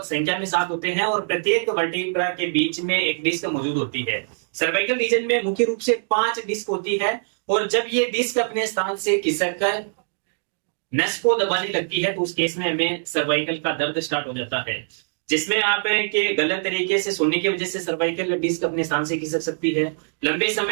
संख्या में 7 होते हैं और प्रत्येक वर्टिब्रा के बीच में एक डिस्क मौजूद होती है। सर्वाइकल रीजन में मुख्य रूप से 5 डिस्क होती है और जब ये डिस्क अपने स्थान से खिसक कर नस को दबाने लगती है तो उस केस में हमें सर्वाइकल का दर्द स्टार्ट हो जाता है, जिसमें आप के गलत तरीके से सोने की वजह से सर्वाइकल डिस्क अपने स्थान से खिसक सकती है। लंबे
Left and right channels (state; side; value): silent; left; 63 dB below the other